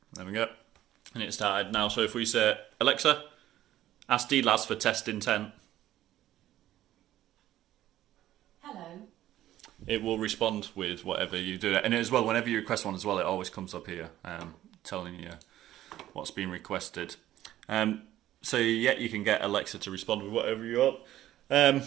There we go. And it started now. So if we say Alexa, ask DLAS for test intent. It will respond with whatever you do. And as well, whenever you request one as well, it always comes up here telling you what's been requested. So yeah, you can get Alexa to respond with whatever you want. I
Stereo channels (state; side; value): quieter; left; 13.5 dB